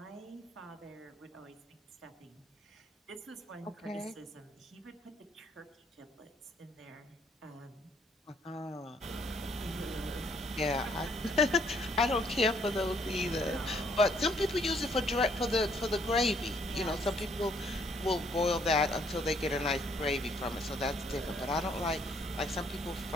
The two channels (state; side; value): normal; both; correlation 0.67